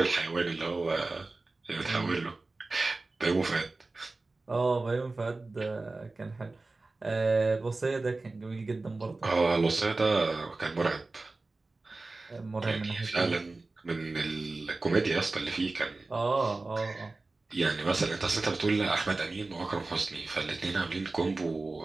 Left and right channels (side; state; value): left; quieter; 3.4 dB